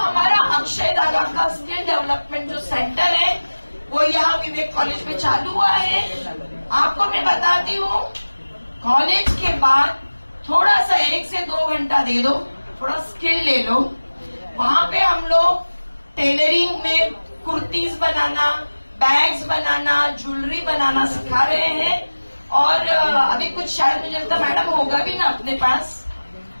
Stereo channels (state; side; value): inverted; both; correlation -1.00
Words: अक्षय दादा का स्किल डेवलपमेंट जो सेंटर है वो यहाँ विवेक कॉलेज में चालू हुआ है। आपको मैं बताती हूँ, कॉलेज के बाद थोड़ा सा 1 से 2 घंटा दे दो, थोड़ा स्किल ले लो। वहाँ पे हम लोग टेलरिंग में कुर्तीज बनाना, बैग्स बनाना, ज्वेलरी बनाना सिखा रहे हैं। और अभी कुछ शायद मुझे लगता मैडम होगा भी ना अपने पास,